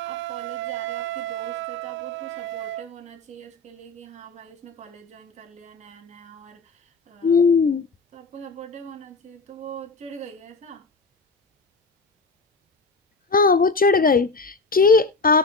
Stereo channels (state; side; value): quieter; right; 3.6 dB